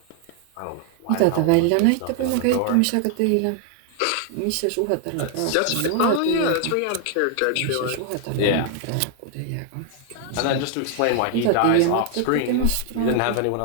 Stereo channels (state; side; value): different; both; correlation 0.00